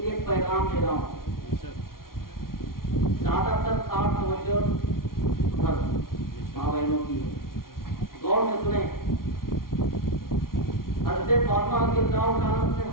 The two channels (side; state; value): right; late; 0.93 ms